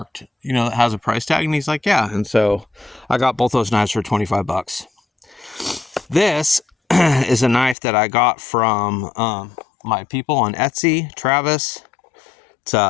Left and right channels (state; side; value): drops out; right; at 7.8 s